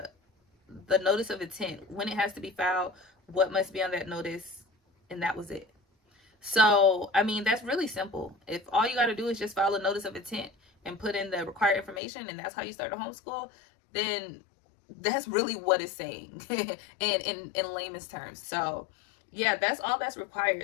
notice of intent, when it has to be filed, what must be on that notice, and that was it. So, I mean, that's really simple. If all you got to do is just file a notice of intent and put in the required information, and that's how you start a homeschool, then that's really what it's saying in layman's terms. So, yeah, that's all that's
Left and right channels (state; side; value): drops out; right; at 12.0 s